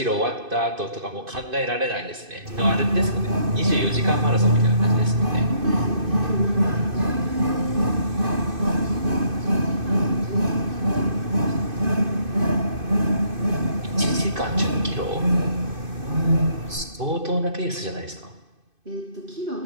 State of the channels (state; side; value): late; left; 2.5 ms